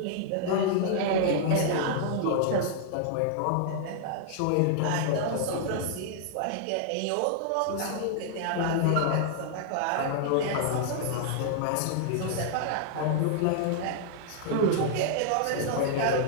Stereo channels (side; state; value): both; different; correlation -0.01